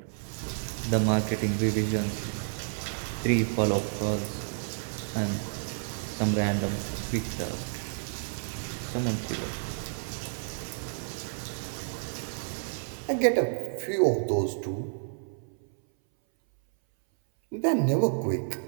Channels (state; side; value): silent; left; 58 dB below the other